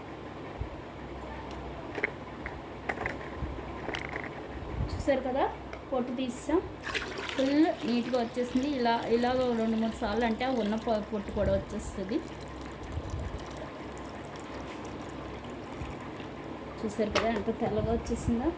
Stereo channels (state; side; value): identical; both; correlation 1.00